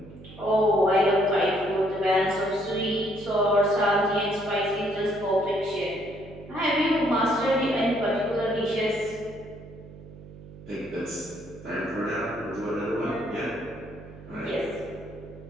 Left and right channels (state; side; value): noise; right; hum, 17 dB below the sound